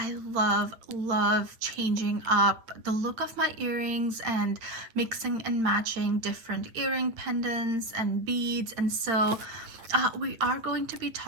love changing up the look of my earrings and mixing and matching different earring pendants and beads. And so we are going to be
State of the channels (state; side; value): late; left; 8.9 ms